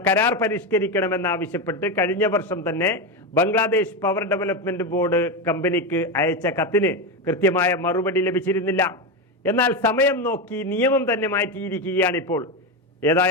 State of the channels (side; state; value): both; normal; correlation 0.13